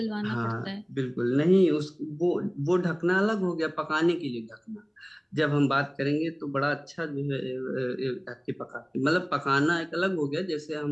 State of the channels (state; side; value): identical; both; correlation 1.00